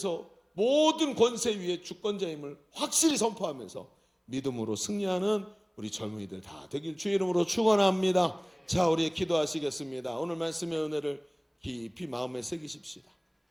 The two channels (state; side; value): identical; both; correlation 1.00